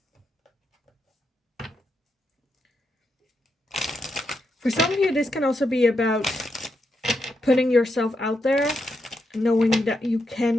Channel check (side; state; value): both; normal; correlation 0.83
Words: For some of you, this can also be about putting yourself out there, knowing that you